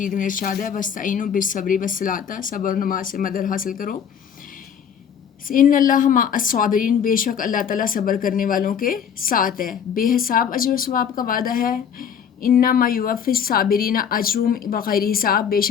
میں ارشاد ہے وَاسْتَعِینُوا بِالصَّبْرِ وَالصَّلَاةِ، صبر و نماز سے مدد حاصل کرو. ان اللہ مع الصابرین، بے شک اللہ تعالیٰ صبر کرنے والوں کے ساتھ ہے. بے حساب اجر و ثواب کا وعدہ ہے. انما یوفی الصابرین اجرہم بغیر حساب، بے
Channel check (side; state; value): right; quieter; 7.8 dB